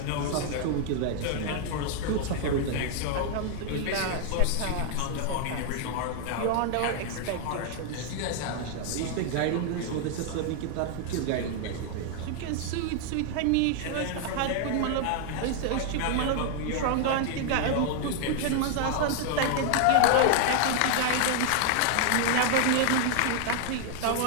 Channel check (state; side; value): different; both; correlation 0.00